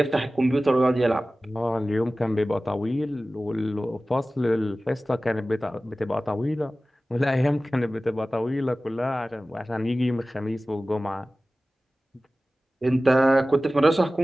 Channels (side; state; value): both; normal; correlation 0.96